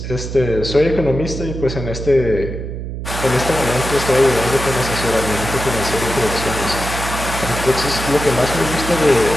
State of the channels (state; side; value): noise; right; hum, 7 dB below the sound